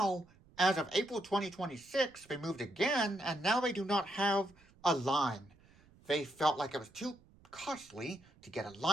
as of April 2026, they moved again, and now they do not have a line. They felt like it was too costly to get a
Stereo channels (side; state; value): right; noise; rumble, 27 dB below the sound